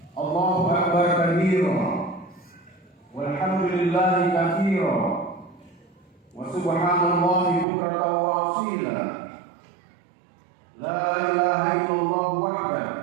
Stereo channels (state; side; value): drops out; left; at 7.7 s